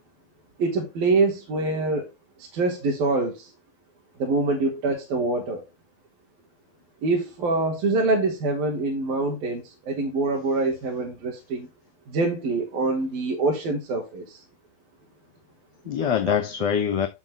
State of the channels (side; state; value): left; late; 12 ms